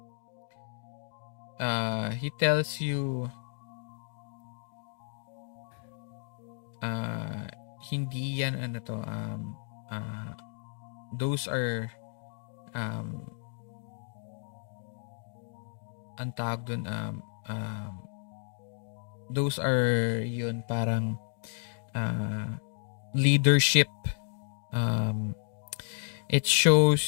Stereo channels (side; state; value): right; silent; digital silence